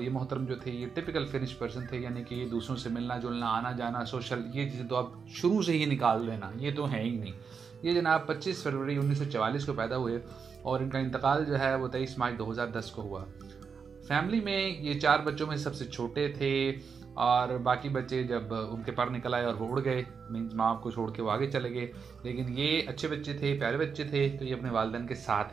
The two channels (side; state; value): left; quieter; 5.9 dB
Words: ये मोहतरम जो थे ये टिपिकल फिनिश पर्सन थे, यानी कि दूसरों से मिलना जुलना, आना जाना, सोशल, ये चीज़ें तो आप शुरू से ही निकाल देना, ये तो है ही नहीं। ये जनाब 25 फरवरी 1944 को पैदा हुए और इनका इंतकाल जो है वो 23 मार्च 2010 को हुआ। फैमिली में ये 4 बच्चों में सबसे छोटे थे और बाकी बच्चे जब उनके पर निकल आए और वो उड़ गए, मीन्स माँ को छोड़ के वो आगे चले गए। लेकिन ये अच्छे बच्चे थे, प्यारे बच्चे थे, तो ये अपने वालिदैन के